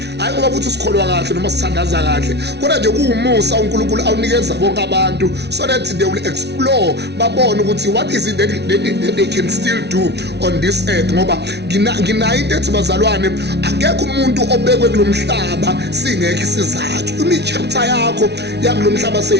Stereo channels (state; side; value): late; left; 0.49 ms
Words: hayi ngoba futhi sikholwa kahle noma sithandaza kahle, kodwa nje kuwumusa uNkulunkulu awunikeza bonke abantu so that they will explore, babone ukuthi what is it that they can still do on this earth. Ngoba nginayo into ethi bazalwane, akekho umuntu obekwe kulomhlaba singekho isizathu. Imi-chapter yakho yakulomhlaba